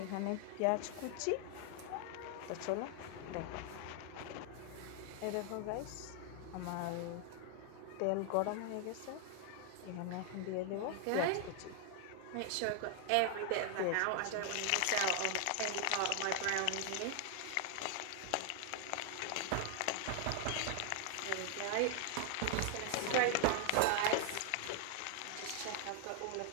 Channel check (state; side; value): different; both; correlation 0.00